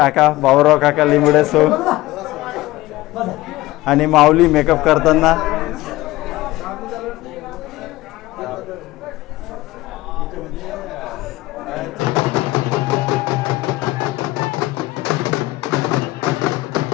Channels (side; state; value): right; quieter; 18.2 dB